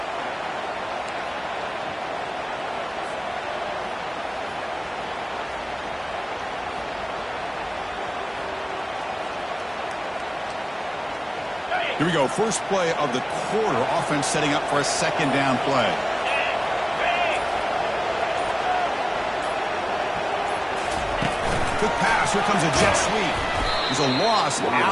Here we go. First play of the quarter. Offense setting up for a 2nd down play. Quick pass. Here comes a jet sweep. There's a loss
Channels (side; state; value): both; identical; correlation 1.00